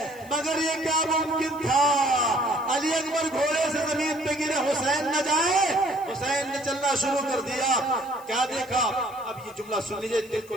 مگر یہ کیا ممکن تھا علی اکبر گھوڑے سے زمین پہ گرے حسین نہ جائے. حسین نے چلنا شروع کر دیا. کیا دیکھا؟ اب یہ جملہ سن لیجئے دل کو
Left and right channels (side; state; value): left; noise; hiss, 23 dB below the sound